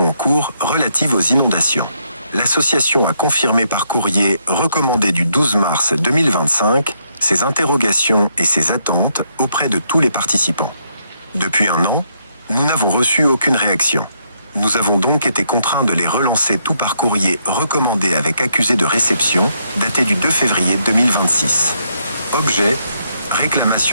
en cours relatives aux inondations. L'association a confirmé par courrier recommandé du 12 mars 2025 ses interrogations et ses attentes auprès de tous les participants. Depuis un an, nous n'avons reçu aucune réaction. Nous avons donc été contraints de les relancer tout par courrier recommandé avec accusé de réception, daté du 2 février 2026. Objet:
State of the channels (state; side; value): inverted; both; correlation -0.76